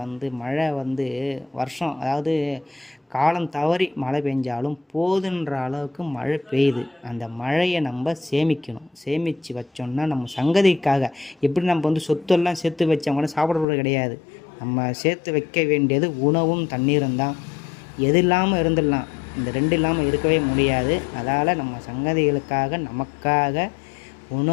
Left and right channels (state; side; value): drops out; right; at 13.7 s